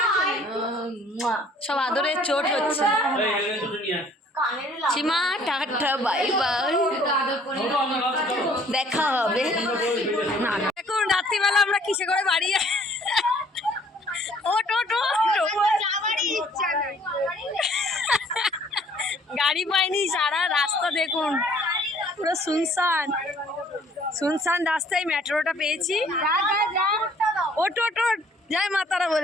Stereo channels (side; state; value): both; normal; correlation 0.58